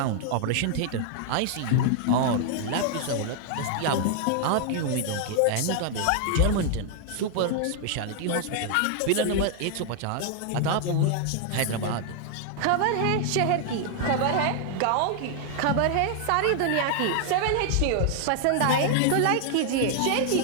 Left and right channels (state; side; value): different; both; correlation 0.00